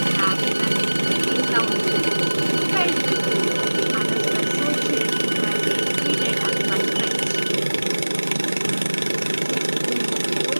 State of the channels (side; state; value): both; inverted; correlation -1.00